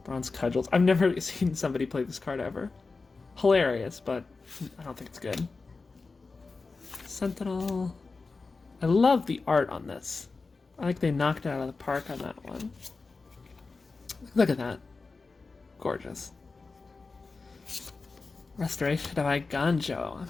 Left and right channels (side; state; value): right; quieter; 4.1 dB